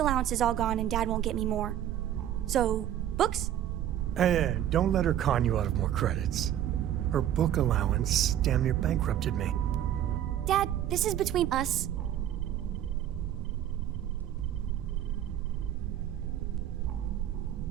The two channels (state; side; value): quieter; left; 11.2 dB